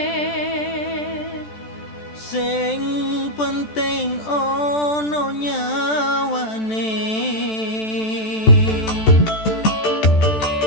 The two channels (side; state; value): right; late; 14 ms